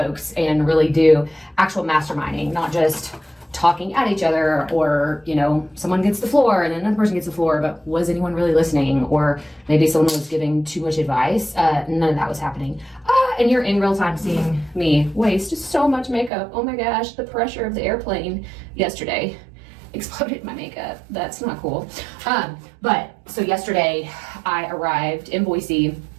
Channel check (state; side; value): drops out; left; at 16.3 s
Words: and really do actual masterminding, not just talking at each other, or, you know, someone gets the floor and then another person gets the floor, but was anyone really listening? Or maybe someone was giving too much advice. None of that was happening. And you're in real time seeing me waste so much makeup. Oh my gosh, the pressure of the airplane yesterday exploded my makeup. That's not cool. But so yesterday I arrived in Boise,